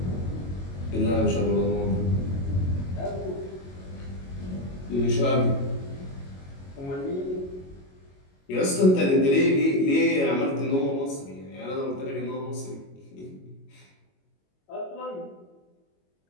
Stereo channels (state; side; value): late; right; 22 ms